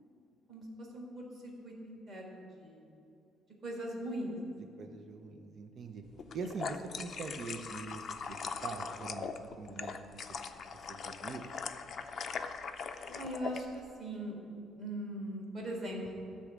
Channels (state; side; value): normal; both; correlation 0.64